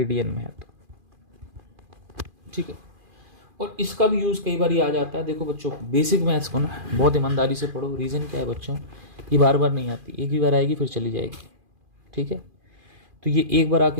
में है तो, ठीक है। और इसका भी यूज़ कई बार आ जाता है। देखो बच्चों, बेसिक मैथ्स को ना बहुत ईमानदारी से पढ़ो। रीज़न क्या है बच्चों, ये बार बार नहीं आती, एक ही बार आएगी फिर चली जाएगी, ठीक है। तो ये एक बार आके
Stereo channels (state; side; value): late; left; 2.4 ms